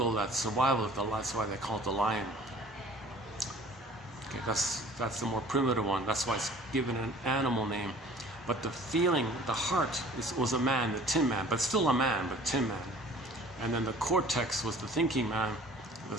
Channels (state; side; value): normal; both; correlation 0.49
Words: that's survival. That's why they call it the lion. Okay, that's the more primitive one. That's why it's given an animal name. But the feeling, the heart, was a man, the Tin Man, but still a man, but Tin Man. And then the cortex was the thinking man, the